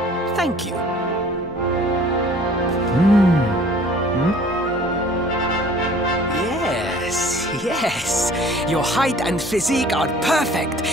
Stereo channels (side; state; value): both; normal; correlation 0.51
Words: Thank you. Yes. Your height and physique are perfect,